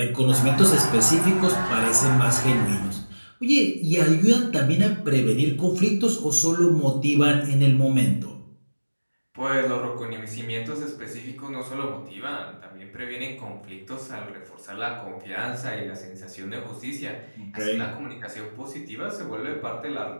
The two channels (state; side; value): inverted; both; correlation -1.00